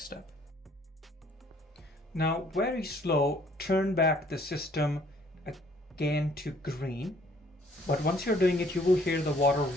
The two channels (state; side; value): normal; both; correlation 0.60